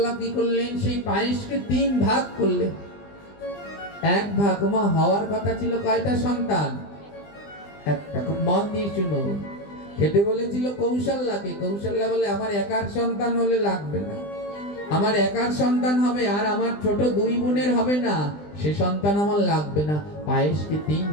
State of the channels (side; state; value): right; late; 20 ms